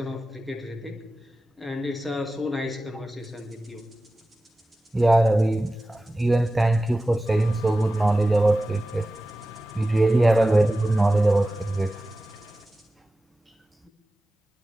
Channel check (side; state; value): both; normal; correlation 0.95